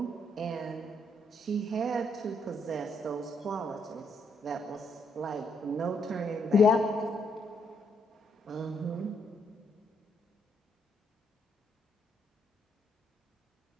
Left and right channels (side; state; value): both; normal; correlation 0.74